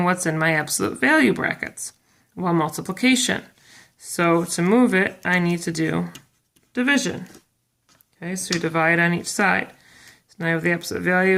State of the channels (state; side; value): identical; both; correlation 1.00